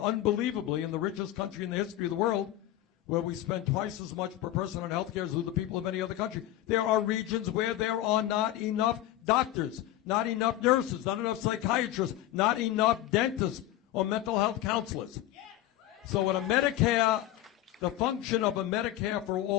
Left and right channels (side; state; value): right; quieter; 13.8 dB